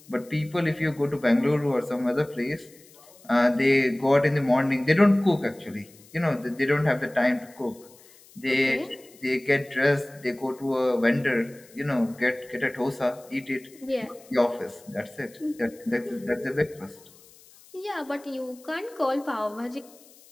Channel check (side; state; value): left; noise; hiss, 25 dB below the sound